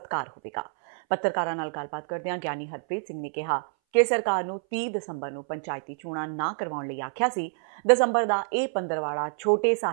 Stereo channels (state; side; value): silent; left; 60 dB below the other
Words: ਹੋਵੇਗਾ। ਪੱਤਰਕਾਰਾਂ ਨਾਲ ਗੱਲਬਾਤ ਕਰਦਿਆਂ ਗਿਆਨੀ ਹਰਪ੍ਰੀਤ ਸਿੰਘ ਨੇ ਕਿਹਾ ਕਿ ਸਰਕਾਰ ਨੂੰ 30 ਦਸੰਬਰ ਨੂੰ ਪੰਚਾਇਤੀ ਚੋਣਾਂ ਨਾ ਕਰਵਾਉਣ ਲਈ ਆਖਿਆ ਸੀ। ਦਸੰਬਰ ਦਾ ਇਹ ਪੰਦਰਵਾੜਾ ਛੋਟੇ